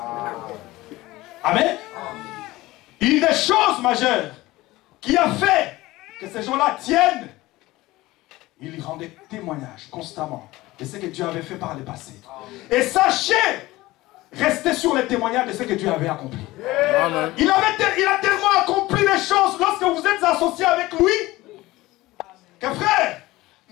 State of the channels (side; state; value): right; quieter; 18.7 dB